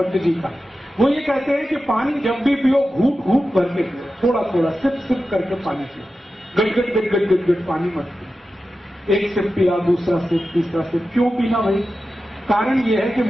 जी का, वो ये कहते हैं कि पानी जब भी पियो घूट घूट भर के पियो, थोड़ा थोड़ा सिप सिप करके पानी पियो। गट गट गट गट गट गट पानी मत पियो। एक सिप पिया, दूसरा सिप, तीसरा सिप। क्यों पीना भाई? कारण ये है कि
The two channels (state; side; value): normal; both; correlation 0.92